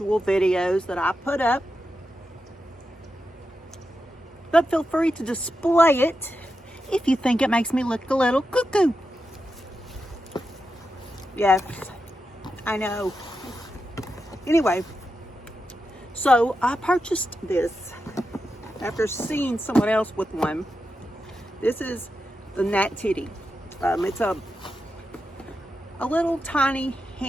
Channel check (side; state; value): both; normal; correlation 0.88